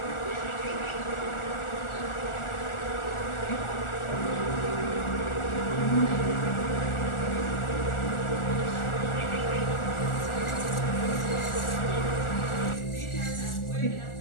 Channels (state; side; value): late; right; 1.4 ms